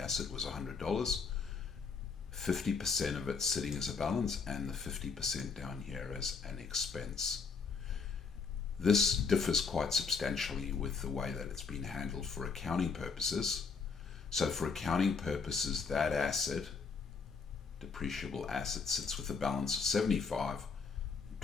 was $100, 50% of it sitting as a balance and the 50% down here as an expense. This differs quite substantially with the way that it's been handled for accounting purposes. So for accounting purposes, that asset, depreciable asset, sits with a balance of 75,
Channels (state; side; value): quieter; right; 5.2 dB